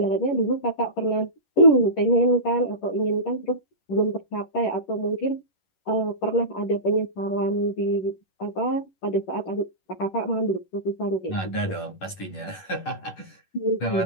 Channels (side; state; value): right; late; 11 ms